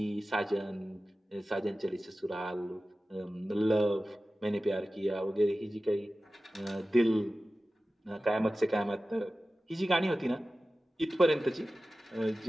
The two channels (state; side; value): normal; both; correlation 0.95